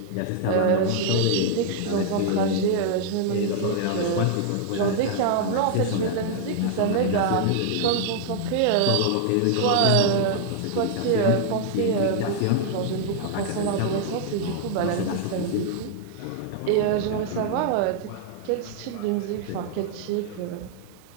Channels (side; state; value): both; different; correlation -0.01